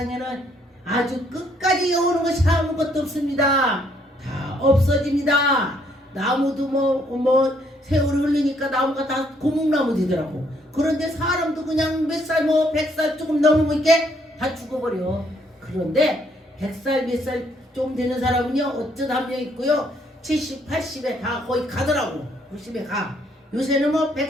아주 끝까지 오는 것이 아무것도 없습니다. 다 없어집니다. 나무도 뭐 세월이 흘리니까 나무가 다 고목나무 되더라고. 그런데 사람도 그냥 몇 살 100살 조금 넘으면 이렇게 다 죽어버려. 그런데 100살 몇 살 좀 되는 사람은요 어쩌다 한 명 있고요 70, 80에 다 거의 가더라고. 90에 가. 요새는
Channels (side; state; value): both; normal; correlation 0.69